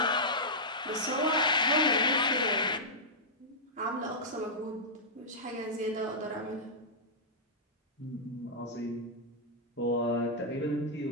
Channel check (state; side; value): normal; both; correlation -0.12